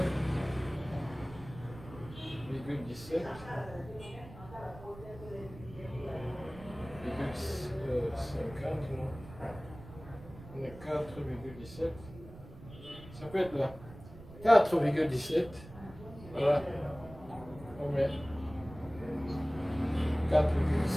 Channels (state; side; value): noise; right; rumble, 16 dB below the sound